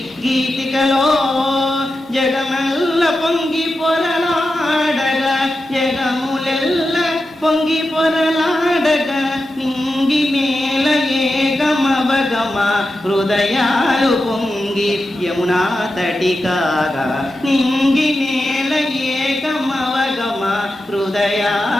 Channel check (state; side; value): normal; both; correlation 0.90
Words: గీతికలో జగమెల్ల పొంగి పొరలాడగా, జగములెల్ల పొంగి పొరలాడగా, నింగి మేల ఏగమవగమ హృదయాలు పొంగి యమునా తటి కాగా, నింగి మేల ఏగమవగమ